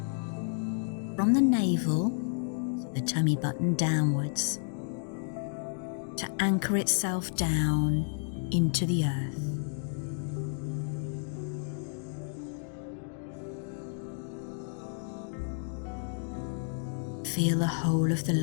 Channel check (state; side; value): silent; right; digital silence